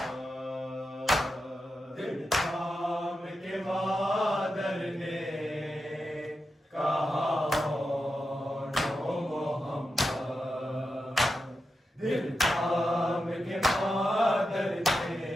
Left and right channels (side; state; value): both; normal; correlation 0.89